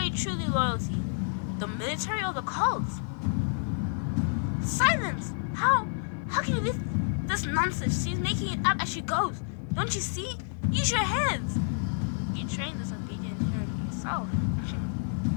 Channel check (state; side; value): silent; right; 57 dB below the other